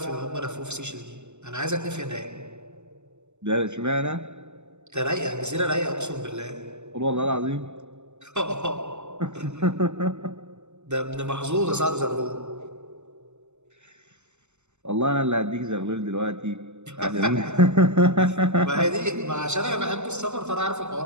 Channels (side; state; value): left; late; 0.83 ms